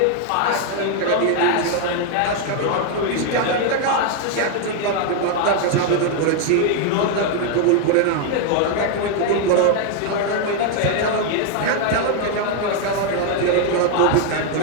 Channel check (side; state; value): both; different; correlation 0.00